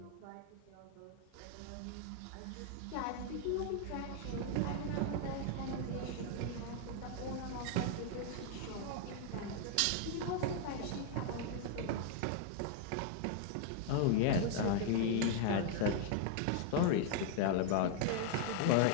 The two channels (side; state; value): both; different; correlation 0.00